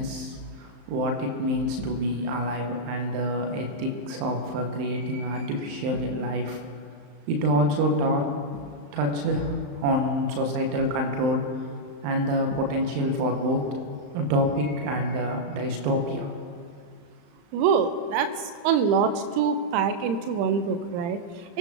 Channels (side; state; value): left; late; 35 ms